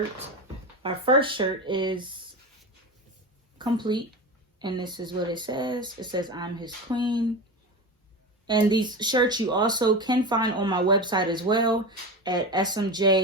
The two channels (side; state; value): both; normal; correlation 0.24